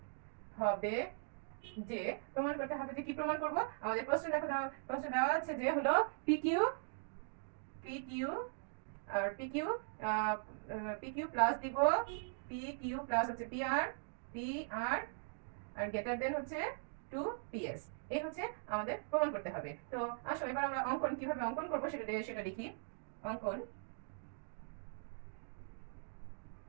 হবে যে কি প্রমাণ করব? আমাদের প্রশ্ন দেওয়া আছে যে হলো P Q R P Q plus দিব পি কিউ প্লাস হচ্ছে পি আর আর গ্রেটার দেন হচ্ছে 2PS। এই হচ্ছে আমাদের প্রমাণ করতে হবে। তো আসো, এবার আমরা কিভাবে অঙ্কন করব সেটা লিখি। অঙ্কন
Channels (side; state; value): left; silent; digital silence